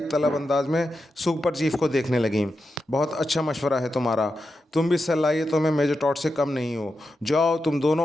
तलब अंदाज में सुपर चीफ को देखने लगीं। बहुत अच्छा मशवरा है तुम्हारा, तुम भी सलाहियतों में मेजर टॉड से कम नहीं हो। जाओ तुम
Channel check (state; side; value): normal; both; correlation 0.88